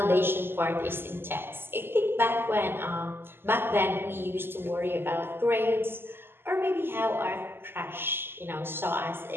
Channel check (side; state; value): left; late; 0.11 ms